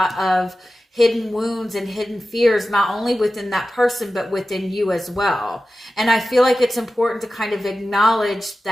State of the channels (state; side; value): normal; both; correlation 0.94